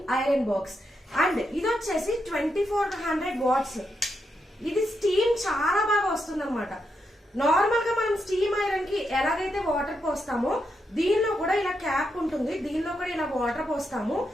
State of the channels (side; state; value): both; normal; correlation 0.83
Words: iron box and ఇది వచ్చేసి 2400 వాట్స్. ఇది స్టీమ్ చాలా బాగా వస్తుంది అనమాట. నార్మల్ గా మనం స్టీమ్ ఐరన్ కి ఎలాగైతే వాటర్ పోస్తామో దీనిలో కూడా ఇలా క్యాప్ ఉంటుంది, దీనిలో కూడా ఇలా వాటర్ పోస్తాము.